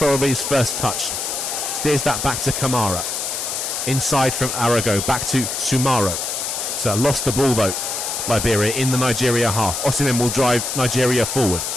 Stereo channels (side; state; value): left; noise; hiss, 3 dB below the sound